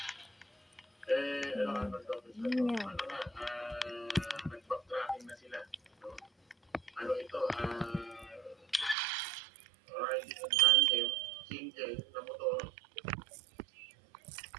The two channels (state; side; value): drops out; left; at 9.0 s